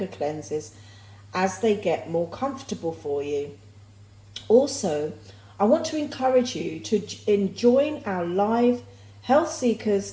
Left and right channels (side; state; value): both; identical; correlation 1.00